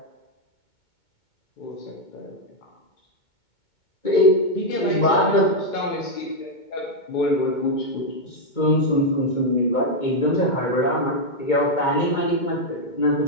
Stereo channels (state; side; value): late; right; 2.2 ms